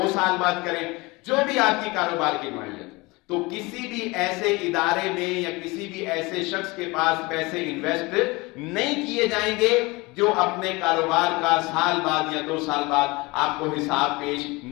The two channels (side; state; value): right; quieter; 24.0 dB